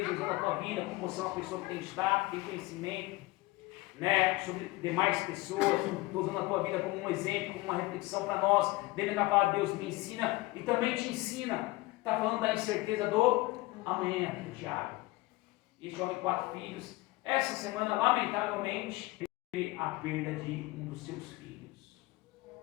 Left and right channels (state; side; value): quieter; right; 20.7 dB